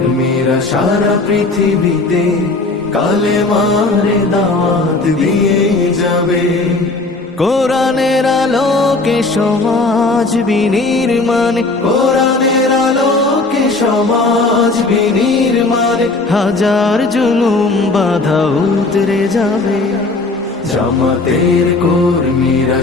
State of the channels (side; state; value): right; quieter; 3.3 dB